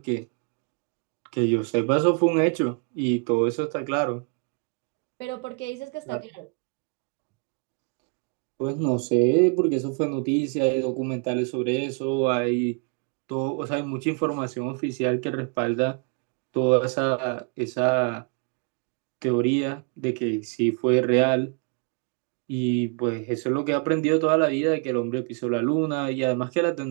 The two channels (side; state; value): left; quieter; 37.7 dB